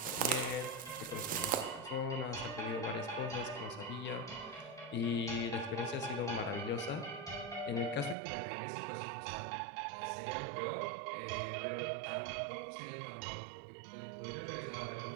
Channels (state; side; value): drops out; left; at 8.2 s